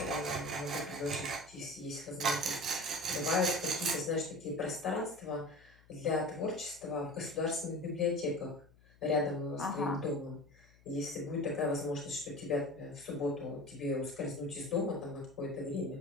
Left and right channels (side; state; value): left; noise; hum, 27 dB below the sound